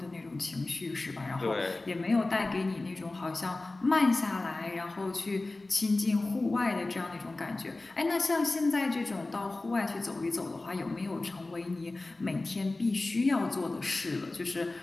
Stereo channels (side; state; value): right; quieter; 3.1 dB